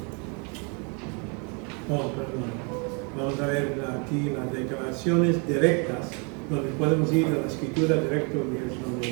Vamos a ver aquí las declaraciones directas, donde podemos ir a la escritura directa,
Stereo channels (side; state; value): left; quieter; 34.9 dB